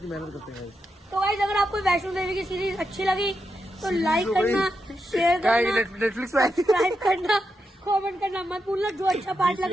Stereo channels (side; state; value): both; normal; correlation 0.85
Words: मेहनत करते हैं। तो गाइस अगर आपको वैष्णो देवी की सीरीज अच्छी लगी तो लाइक करना, शेयर करना, नेटफ्लिक्स सब्सक्राइब करना, कमेंट करना मत भूलना जो अच्छा पार्ट